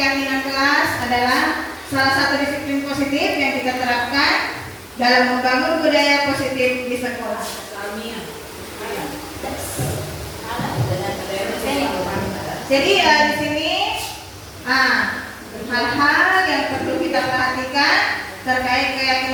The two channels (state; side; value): identical; both; correlation 1.00